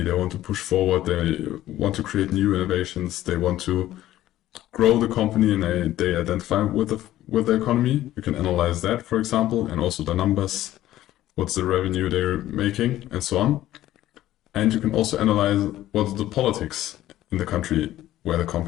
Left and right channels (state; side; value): quieter; right; 14.0 dB